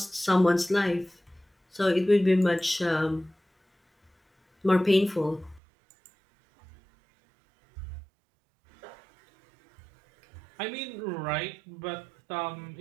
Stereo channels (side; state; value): left; drops out; at 5.6 s